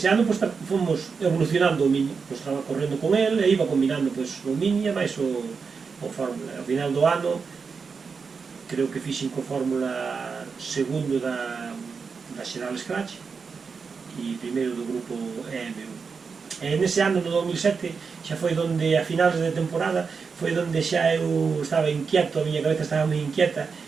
ano fomos evolucionando o Mini, estaba correndo con el e iba combinando o Mini e máis o Fórmula. Ao final do ano creo que fixen co Fórmula segundo da General Scratch e primeiro do grupo EM1. E nese ano, no 2007, xa foi donde, a finales de temporada, foi donde xa eu estaba inquieto, a miña cabeza estaba moi inquieta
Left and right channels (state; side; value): quieter; left; 5.3 dB